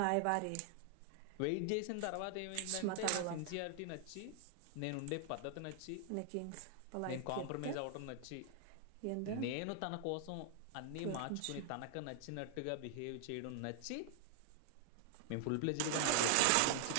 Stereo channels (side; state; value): both; different; correlation 0.00